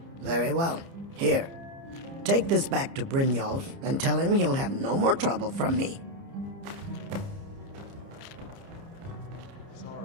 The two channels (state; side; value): late; left; 30 ms